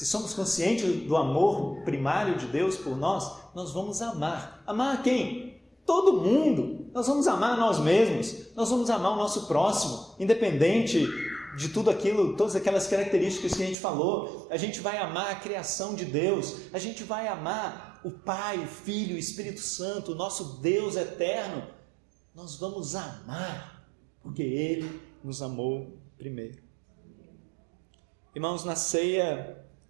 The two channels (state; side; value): drops out; left; at 13.8 s